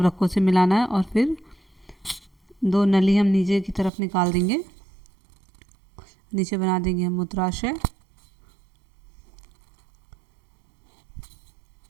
से मिलाना है, और फिर दो नली हम नीचे की तरफ निकाल देंगे, नीचे बना देंगे हम मूत्राशय।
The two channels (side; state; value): left; drops out; at 3.9 s